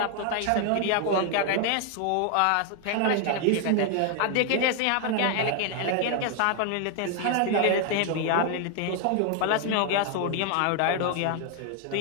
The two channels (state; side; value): different; both; correlation 0.00